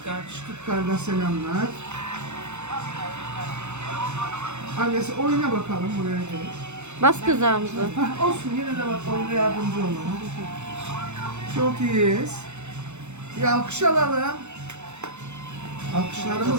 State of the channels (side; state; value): left; late; 0.83 ms